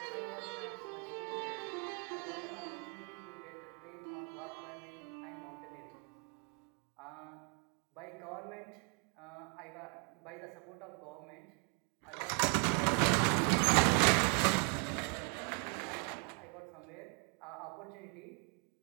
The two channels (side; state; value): left; quieter; 35.9 dB